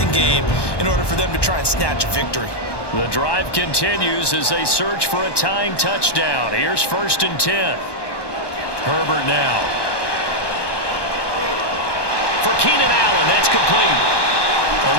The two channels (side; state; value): right; late; 1.2 ms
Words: game in order for them to try and snatch a victory. The drive continues as they search for a tying touchdown. Here's 1st and 10. Herbert now. For Keenan Allen, that's complete.